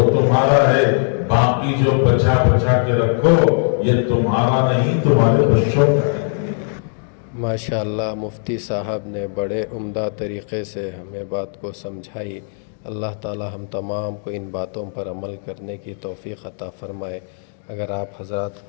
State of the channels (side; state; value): right; silent; 66 dB below the other